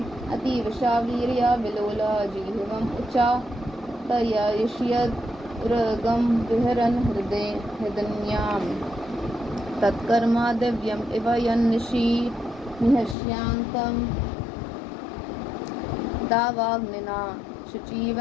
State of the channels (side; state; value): right; drops out; at 13.2 s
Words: अतीवशा वीर्या विलोला जीवम उच्चा तयष्यद उरगम विहरन हृदयाम तत्कर्मा दिव्यम इव यन्निशि निहस्यांतम दावाग्निना